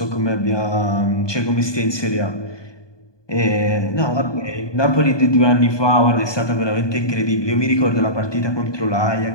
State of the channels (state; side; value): late; right; 1.2 ms